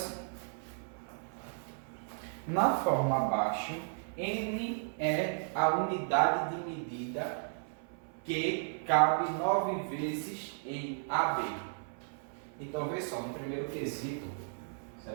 na forma abaixo, N é a unidade de medida que cabe 9 vezes em AB. Então, vê só, no primeiro quesito,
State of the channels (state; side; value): silent; left; 55 dB below the other